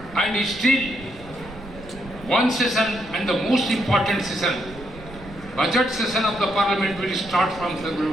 and still one session, and the most important session, budget session of the Parliament, will start from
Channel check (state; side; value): noise; right; rumble, 17 dB below the sound